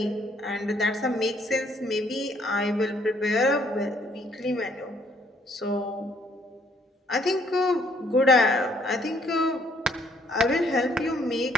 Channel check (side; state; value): both; normal; correlation 0.66